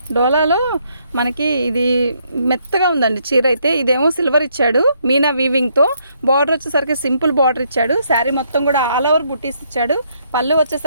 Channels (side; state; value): both; inverted; correlation -0.72